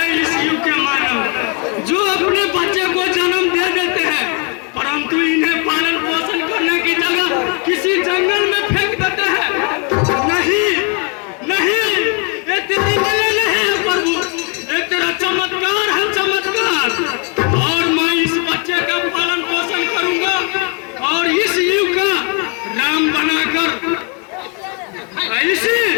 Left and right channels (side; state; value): right; quieter; 34.7 dB